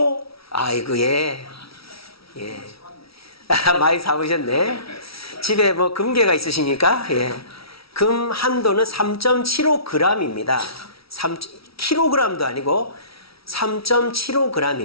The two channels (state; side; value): late; right; 0.75 ms